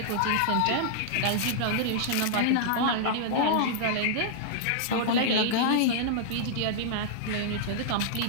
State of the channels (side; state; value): both; different; correlation -0.01